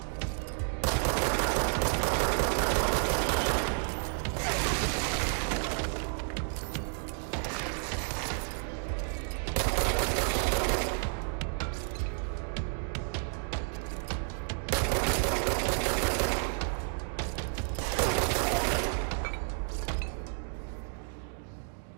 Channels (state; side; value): silent; left; 57 dB below the other